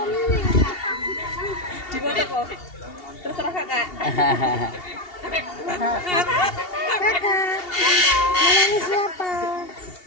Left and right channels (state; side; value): late; right; 2.8 ms